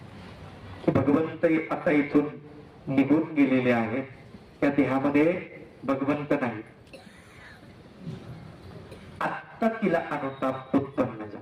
की भगवंत आता इथून निघून गेलेले आहेत, त्या देहामध्ये भगवंत नाही. आत्ता तिला अनुताप उत्पन्न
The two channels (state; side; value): identical; both; correlation 1.00